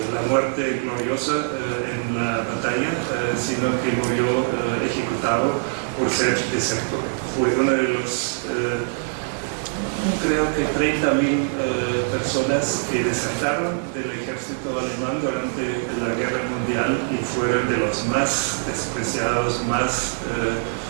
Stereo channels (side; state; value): left; silent; digital silence